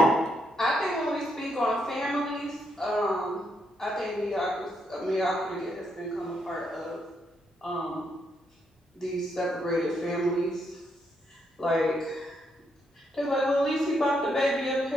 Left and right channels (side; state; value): both; normal; correlation 0.77